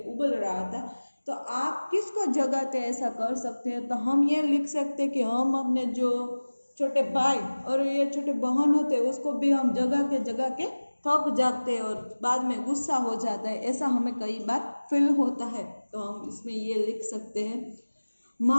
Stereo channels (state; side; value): inverted; both; correlation -1.00